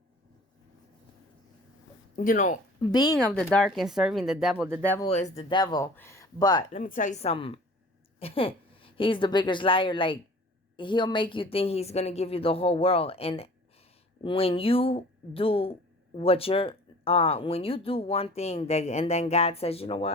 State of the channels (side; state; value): both; normal; correlation 0.46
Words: you know, being of the dark and serving the devil is the devil. But let me tell you something. He's the biggest liar. Like, he'll make you think he's going to give you the whole world. And When you do what you're, when you do one thing that, and then God says, you know